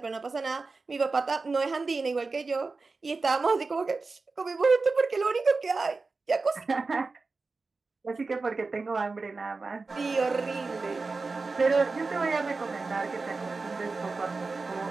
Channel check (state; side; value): quieter; left; 4.0 dB